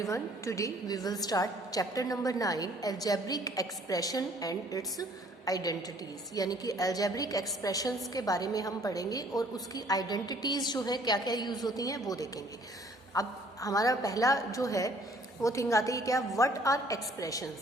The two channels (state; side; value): normal; both; correlation 0.58